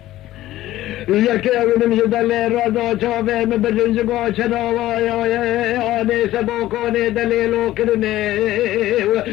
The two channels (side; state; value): right; quieter; 15.0 dB